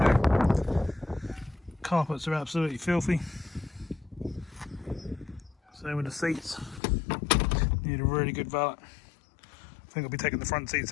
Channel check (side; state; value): right; drops out; at 6.8 s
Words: to do. Carpets are absolutely filthy. Same with the seats. Need a really good valet. I think I'll be taking the front seats